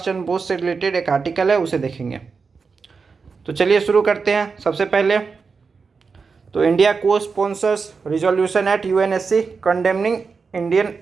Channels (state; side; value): quieter; left; 5.0 dB